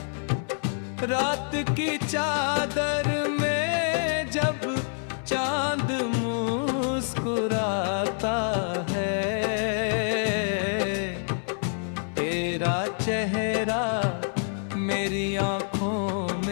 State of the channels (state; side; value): silent; right; 60 dB below the other